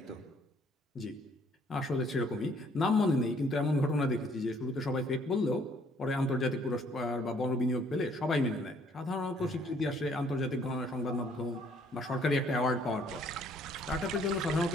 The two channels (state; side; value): normal; both; correlation 0.63